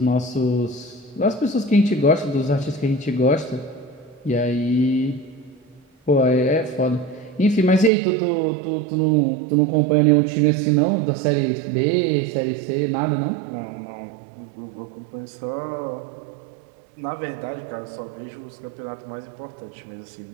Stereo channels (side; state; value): left; drops out; at 7.9 s